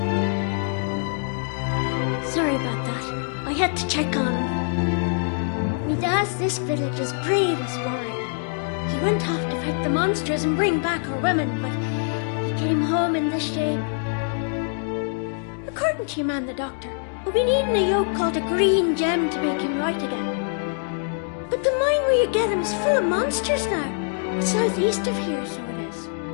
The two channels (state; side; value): silent; right; 58 dB below the other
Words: Sorry about that. I had to check on him. Me dad's this village's bravest warrior. He went off to fight the monsters and bring back our women, but he came home in this shape. According to your man, the doctor, we'll be needing a yoke called a green gem to make him right again. But the mine where you get him is full of monsters now. It's southeast of here, so it is.